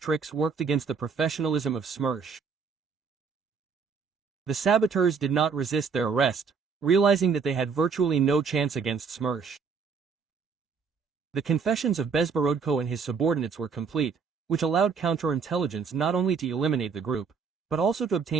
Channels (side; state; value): left; quieter; 5.7 dB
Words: worked against the professionalism of Smersh. The saboteurs did not resist their arrest, realizing that they had virtually no chance against Smersh. The confessions of Bezborodko and his subordinates were complete, which allowed counterintelligence not only to eliminate the group, but also to